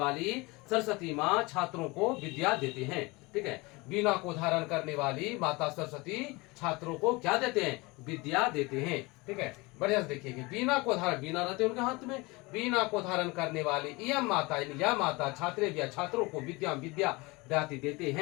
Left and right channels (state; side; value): quieter; right; 24.4 dB